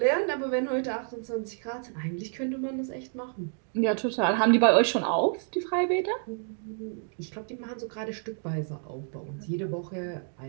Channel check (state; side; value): silent; left; 58 dB below the other